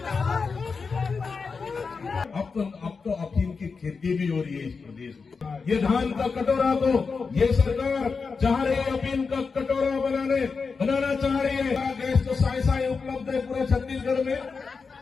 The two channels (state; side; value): quieter; right; 4.9 dB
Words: अब तो अफीम की खेती भी हो रही है इस प्रदेश में। ये धान का कटोरा तो ये सरकार चाह रही है अफीम का कटोरा बनाना चाह रही है। गैस तो साई उपलब्ध है पूरे छत्तीसगढ़ में।